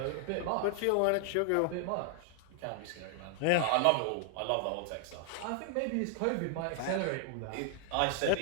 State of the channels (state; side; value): different; both; correlation 0.00